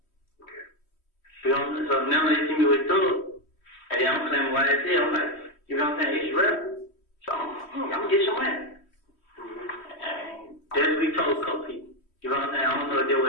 You know what I'm saying? So now they see me with Thug. And then I'm claiming YSL. I'm like, you know what I'm saying? It's real. So I'm going to get some money. And that's what we told a couple people. You know what I'm saying? I don't know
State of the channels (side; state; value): right; late; 3.1 ms